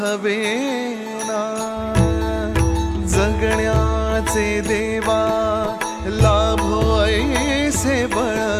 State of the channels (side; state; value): both; identical; correlation 1.00